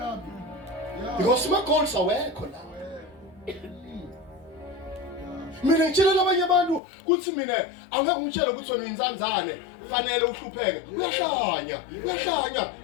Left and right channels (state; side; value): drops out; right; at 6.8 s